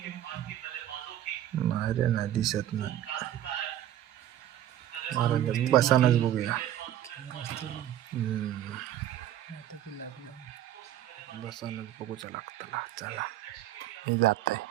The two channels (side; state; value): left; quieter; 12.1 dB